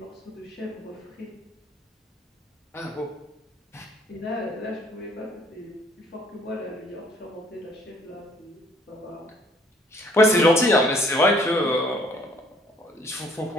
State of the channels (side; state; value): both; normal; correlation 0.61